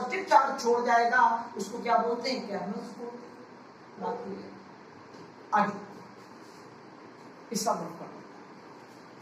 चार्ज छोड़ जाएगा, उसको क्या बोलते हैं, कैर्नल्स बोलते हैं। बात क्लियर, आगे इसका ग्रुप कर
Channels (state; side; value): identical; both; correlation 1.00